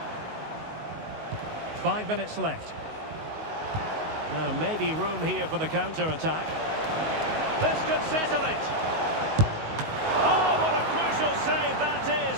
5 minutes left. Now, maybe room here for the counter-attack. This could settle it. Oh, what a crucial save that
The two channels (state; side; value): late; left; 19 ms